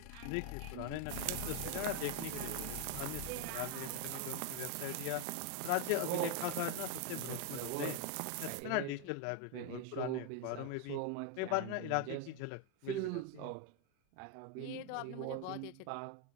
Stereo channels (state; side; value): different; both; correlation 0.01